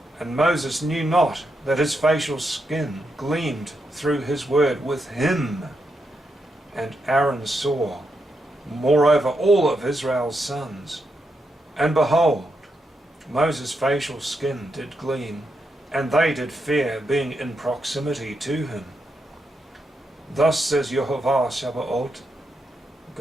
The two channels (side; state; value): both; normal; correlation 0.83